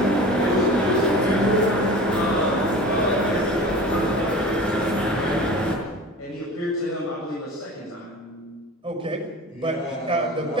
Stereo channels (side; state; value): both; normal; correlation 0.37